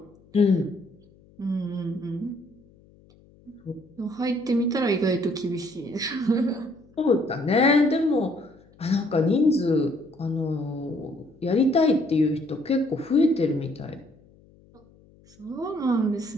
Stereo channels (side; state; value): left; noise; hum, 28 dB below the sound